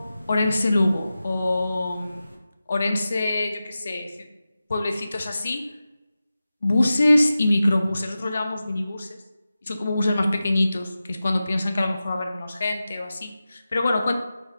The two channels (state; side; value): inverted; both; correlation -0.94